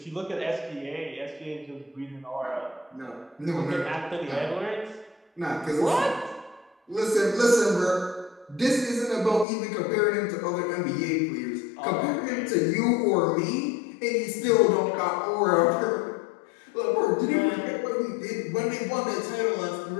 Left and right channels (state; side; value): drops out; right; at 9.5 s